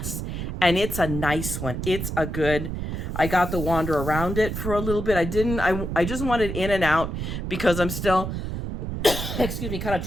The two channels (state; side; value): noise; right; rumble, 4 dB below the sound